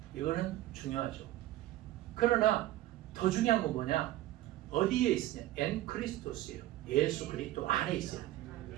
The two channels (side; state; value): left; quieter; 15.4 dB